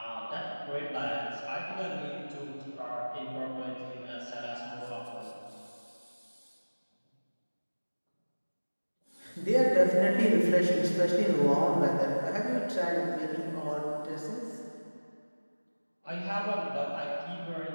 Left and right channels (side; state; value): both; inverted; correlation -1.00